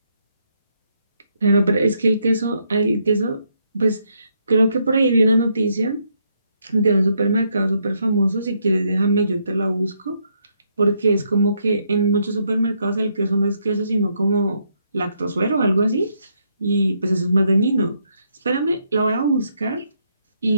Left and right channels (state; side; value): inverted; both; correlation -0.75